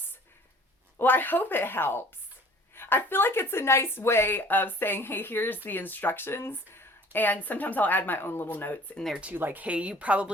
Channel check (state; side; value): normal; both; correlation 0.50